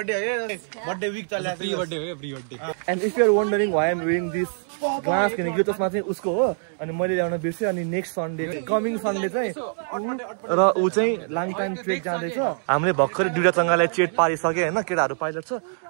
है। बर्थडे वीक चलिरहेको छ। प्री बर्थडे हो, pre birthday. And if you are wondering why I'm wearing this glass किनकि यो चस्मा चाहिँ उसको हो अनि मैले ल्याउन बिर्सेँ। अनि नेक्स्ट सन्डे कमिङ सन्डे चाहिँ र ऊ चाहिँ लाङटाङ ट्रेक जाँदैछ। हामीले भर्खरै दुईटा चंगालाई चेट पारिसके हैन, केटाहरू पाइलट छ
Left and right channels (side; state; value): left; silent; digital silence